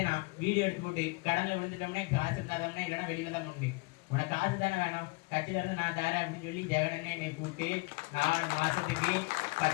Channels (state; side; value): quieter; right; 26.5 dB